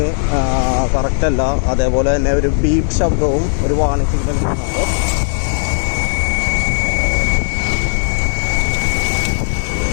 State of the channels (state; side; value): silent; right; digital silence